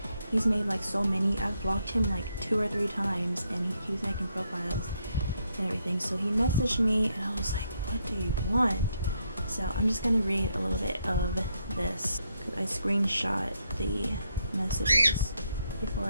He's made like so many. I've blocked him like 2 or 3 times, and he keeps making profiles and everything. So he messaged me, and I was like, what do you want? So I'm just gonna read a little bit of this, because I screenshot the messages before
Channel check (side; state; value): both; inverted; correlation -0.77